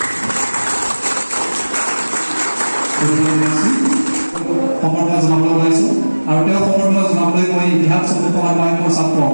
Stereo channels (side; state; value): both; inverted; correlation -1.00